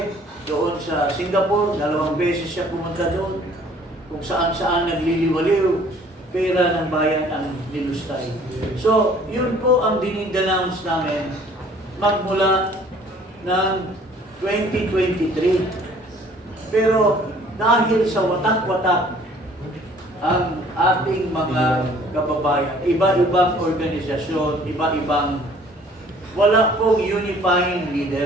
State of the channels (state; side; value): normal; both; correlation 0.55